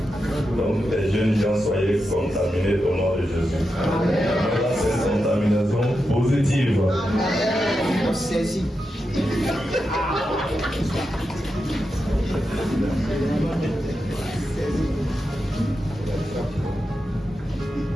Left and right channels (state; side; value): normal; both; correlation 0.88